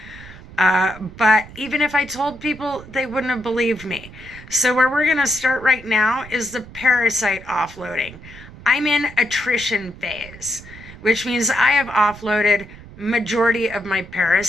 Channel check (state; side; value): noise; right; rumble, 17 dB below the sound